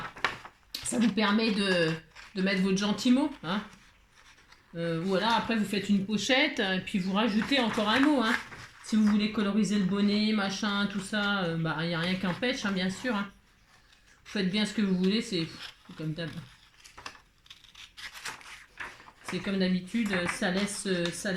Ça vous permet de mettre votre gentil mot. Hein. Voilà, après vous faites une pochette et puis vous rajoutez encore un mot. Hein. Si vous voulez coloriser le bonnet, machin, tout ça, bah il n'y a rien qu'un pêche, hein, bien sûr. Hein. Vous faites bien ce que vous voulez, c'est comme d'habitude. C'est comme d'habitude, ça laisse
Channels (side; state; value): both; identical; correlation 1.00